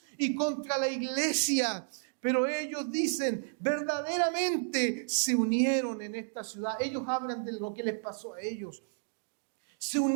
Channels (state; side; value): silent; left; digital silence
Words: y contra la iglesia. Pero ellos dicen, verdaderamente se unieron en esta ciudad. Ellos hablan de lo que les pasó a ellos. Se